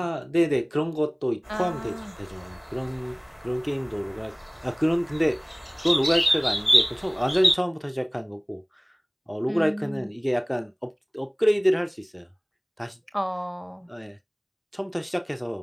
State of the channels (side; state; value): both; identical; correlation 1.00